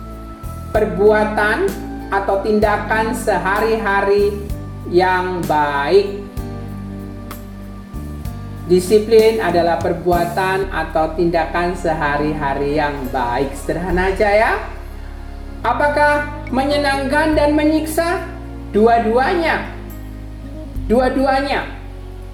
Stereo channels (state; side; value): identical; both; correlation 1.00